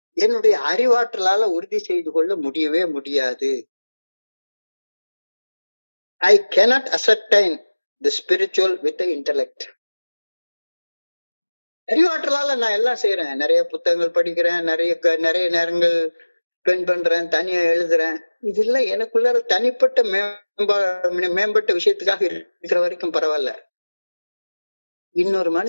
என்னுடைய அறிவாற்றலால உறுதி செய்து கொள்ள முடியவே முடியாது. I cannot ascertain the spiritual with the intellect. அறிவாற்றலால நான் எல்லாம் செய்யறேன், நிறைய புத்தகங்கள் படிக்கிறேன், நிறைய நேரங்கள் ஸ்பெண்ட் பண்றேன், தனியா எழுதுறேன். இதெல்லாம் எனக்குள்ள தனிப்பட்ட மேம்பட்ட விஷயத்துக்காக இருக்கிற வரைக்கும் பரவாயில்ல. இன்னொரு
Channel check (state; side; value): inverted; both; correlation -1.00